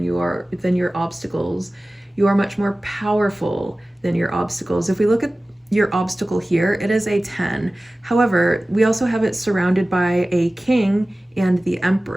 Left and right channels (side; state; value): both; normal; correlation 0.97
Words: your obstacles. You are much more powerful than your obstacles. If we look at your obstacle here, it is a 10. However, we also have it surrounded by a king and the